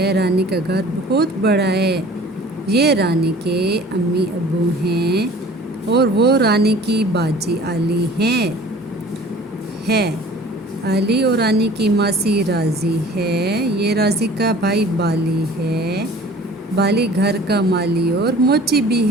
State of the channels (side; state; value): both; normal; correlation 0.47